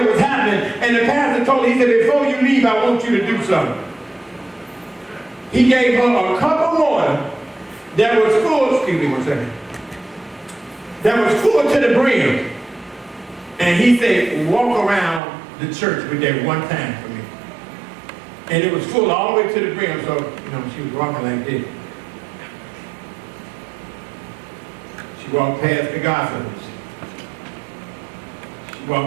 was happening. And the pastor told her, he said, before you leave, I want you to do something. He gave her a cup of water that was full, excuse me one second, that was full to the brim. And he said, walk around the church with that one time for me. And it was full all the way to the brim, so, she was walking like this. She walked past the gossipers. She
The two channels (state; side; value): drops out; left; at 15.2 s